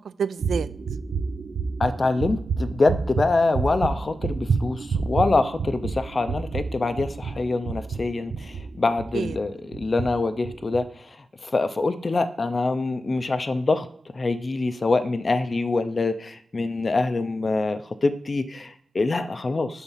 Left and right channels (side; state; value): both; normal; correlation 0.91